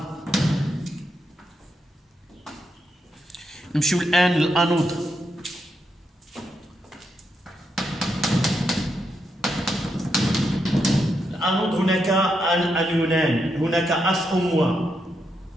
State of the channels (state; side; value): normal; both; correlation 0.82